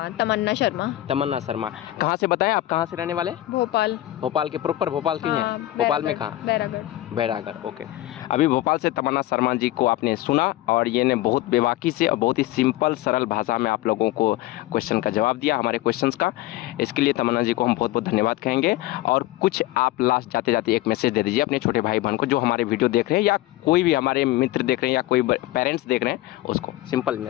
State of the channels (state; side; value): quieter; right; 16.2 dB